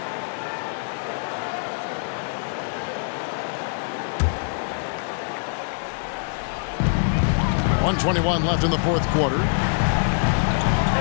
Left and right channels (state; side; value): silent; right; 57 dB below the other